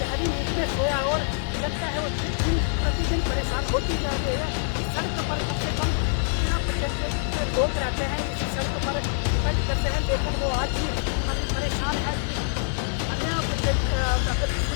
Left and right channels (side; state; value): right; silent; digital silence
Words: नींद में सोया और जनता है वो दिन प्रतिदिन परेशान होती जा रही है। इस सड़क पर कम से कम 13% लोग रहते हैं, इसी सड़क पर डिपेंड करते हैं, लेकिन वो आज भी काफ़ी परेशान है कि अन्य अगर